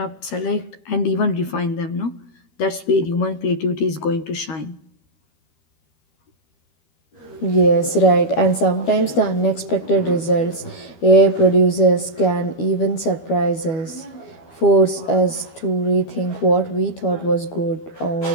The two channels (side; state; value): right; late; 12 ms